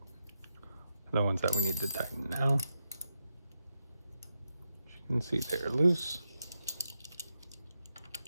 the ones that we need to tighten now. As you can see, they're loose.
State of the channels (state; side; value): inverted; both; correlation -0.86